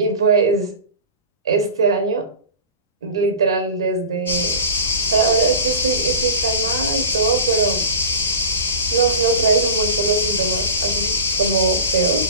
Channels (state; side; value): inverted; both; correlation -0.34